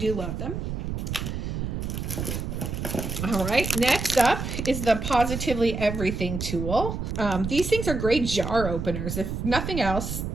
love them. All right, next up is the Positively Everything tool. These things are great jar openers. If nothing else,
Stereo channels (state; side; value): noise; right; rumble, 4 dB below the sound